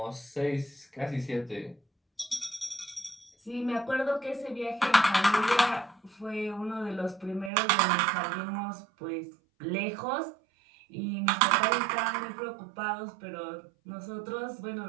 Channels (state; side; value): drops out; left; at 7.5 s